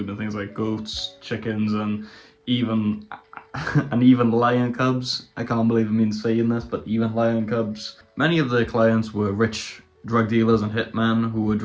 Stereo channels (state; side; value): identical; both; correlation 1.00